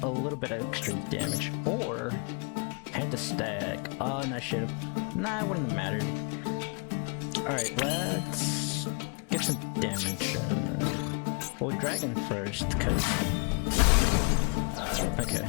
a little bit of extra damage, or hand to stack. Oh, and I should have. Nah, it wouldn't have mattered. Alright, let's get some damage. Well, Dragon first, because. Okay.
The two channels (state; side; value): quieter; right; 39.5 dB